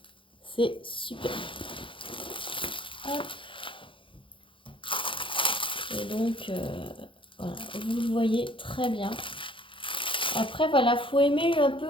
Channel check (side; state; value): right; late; 0.25 ms